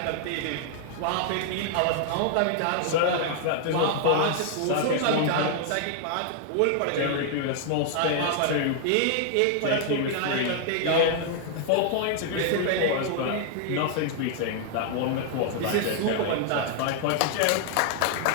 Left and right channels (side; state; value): both; different; correlation 0.00